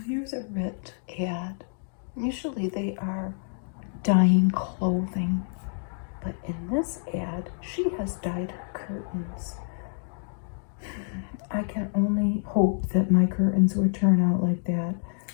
here's a Rit ad. Usually they are dyeing clothing, but in this ad, she has dyed her curtains. I can only hope that my curtains would turn out like that.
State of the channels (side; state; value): right; silent; digital silence